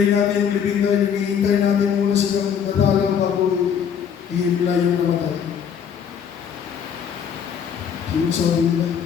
natin yung libing tayo, hinihintay natin muna silang nadalaw bago ihimla yung namatay. So yung sabi nila,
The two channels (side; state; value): right; quieter; 7.7 dB